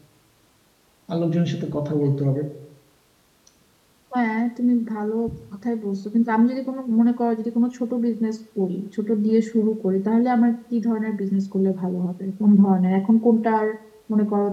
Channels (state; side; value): identical; both; correlation 1.00